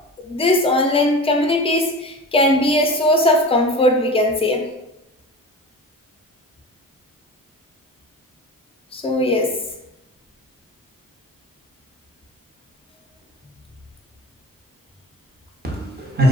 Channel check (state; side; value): normal; both; correlation 0.34